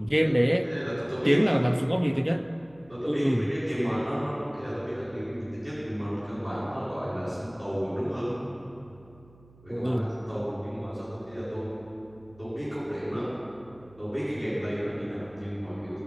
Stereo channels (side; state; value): right; noise; hum, 25 dB below the sound